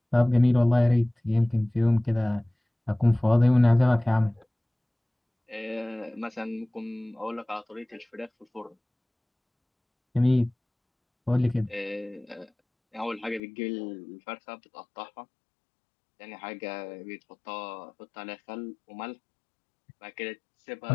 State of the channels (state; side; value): drops out; right; at 13.4 s